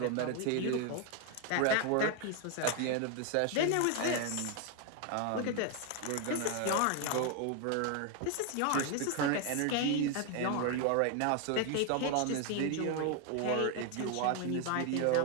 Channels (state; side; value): different; both; correlation 0.01